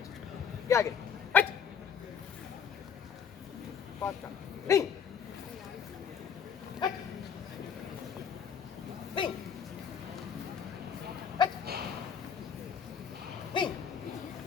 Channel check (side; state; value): right; quieter; 7.4 dB